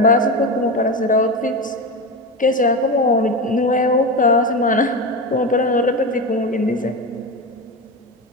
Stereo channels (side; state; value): both; normal; correlation 0.20